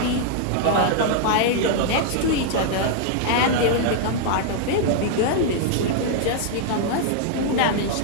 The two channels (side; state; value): both; different; correlation 0.00